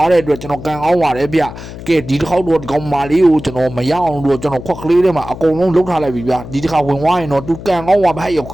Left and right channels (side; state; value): left; noise; hum, 12 dB below the sound